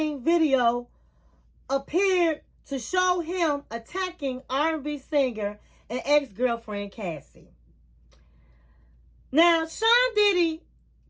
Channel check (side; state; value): both; identical; correlation 1.00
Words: video appeared to show him attacking R&B singer and ex-girlfriend Cassie. Now, Sean Diddy